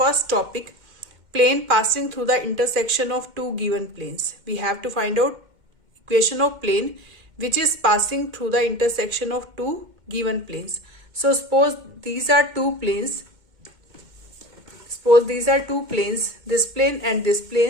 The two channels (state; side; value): late; left; 2.1 ms